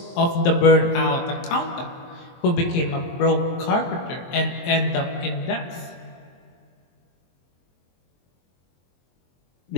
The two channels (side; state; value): right; late; 23 ms